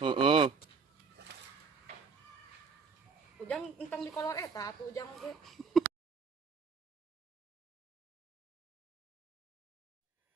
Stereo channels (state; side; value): quieter; left; 5.1 dB